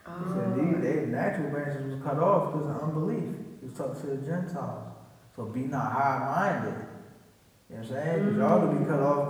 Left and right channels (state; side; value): identical; both; correlation 1.00